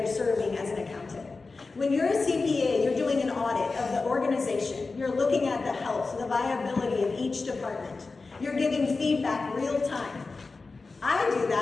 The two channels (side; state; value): right; quieter; 3.9 dB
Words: serving as an accountant. When you're a CPA, you're doing an audit of the organization. You're looking at the health, the viability of each department. You're giving feedback real time. I do